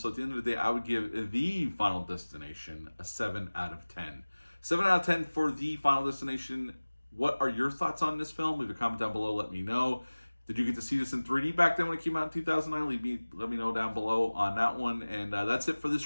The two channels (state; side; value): inverted; both; correlation -1.00